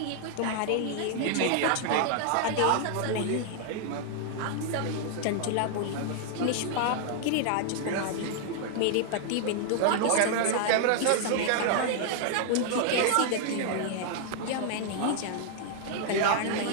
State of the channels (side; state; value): both; different; correlation 0.00